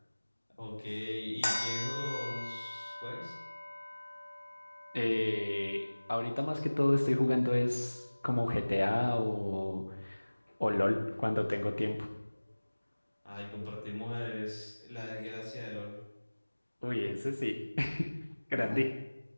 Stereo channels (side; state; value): both; inverted; correlation -1.00